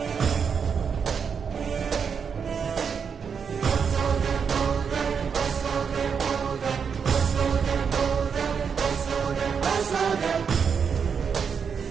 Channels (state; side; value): quieter; left; 6.5 dB